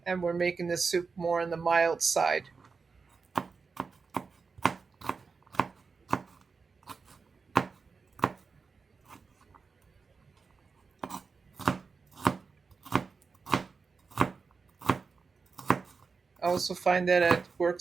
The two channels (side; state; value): left; quieter; 4.8 dB